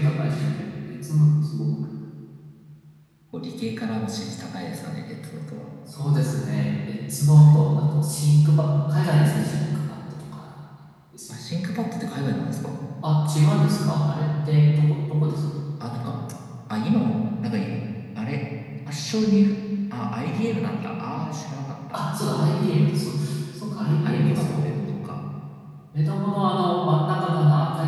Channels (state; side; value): identical; both; correlation 1.00